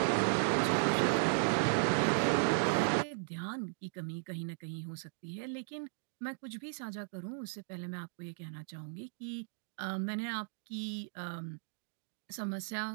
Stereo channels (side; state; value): left; silent; digital silence